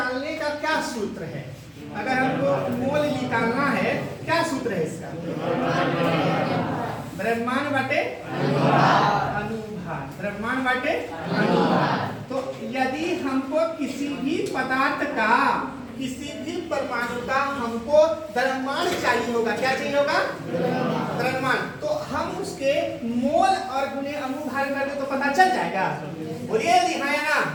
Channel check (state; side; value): identical; both; correlation 1.00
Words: का क्या सूत्र है? अगर हमको मोल निकालना है, क्या सूत्र है इसका? द्रव्यमान बटे अनुभार, द्रव्यमान बटे अनुभार। तो यदि हमको किसी भी पदार्थ का, किसी भी परमाणु का हमको द्रव्यमान चाहिए होगा, क्या चाहिए होगा? द्रव्यमान। तो हम उसके मोल और गुणे अनुभार कर दे तो पता चल जाएगा। बोलिए यदि हाँ या ना?